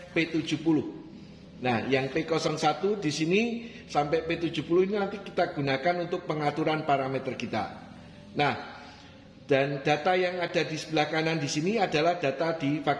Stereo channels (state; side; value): identical; both; correlation 1.00